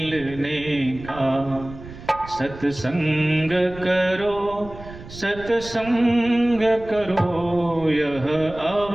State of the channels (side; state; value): right; noise; rumble, 15 dB below the sound